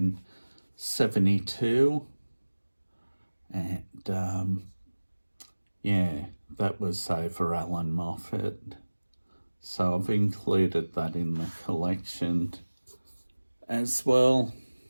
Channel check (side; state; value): both; inverted; correlation -1.00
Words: And yeah, that was over Allan Moffat. So I've included that in the collection as well.